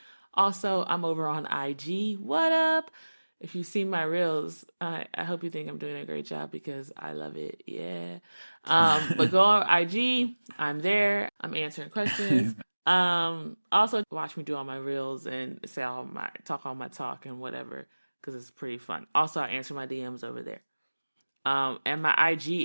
Also, I'm over on IG. What up? If you see my reels, I hope you think I'm doing a great job because I love it. Yeah. But go on IG. I'm there. I'm answering questions. Also watch me do all my reels and say all my talk and whatever because it's pretty fun. Also, I answer my DMs over there. And my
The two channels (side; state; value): both; inverted; correlation -1.00